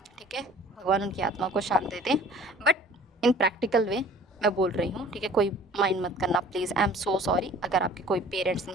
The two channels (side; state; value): both; normal; correlation 0.49